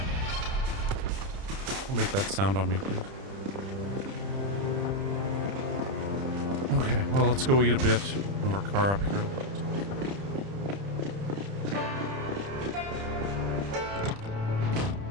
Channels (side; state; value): left; late; 30 ms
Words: Don't make that sound on me, please. Okay, well, let's go eat a bit. Move our car up here.